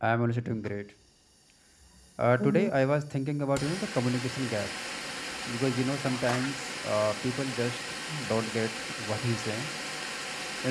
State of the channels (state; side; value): identical; both; correlation 1.00